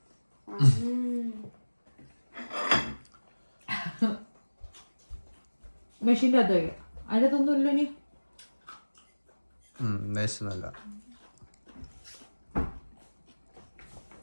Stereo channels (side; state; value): both; inverted; correlation -1.00